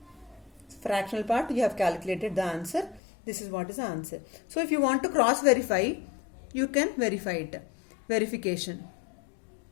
Fractional part you have calculated the answer. This is what is the answer. So if you want to cross verify, you can verify it. Verification.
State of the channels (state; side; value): drops out; right; at 3.0 s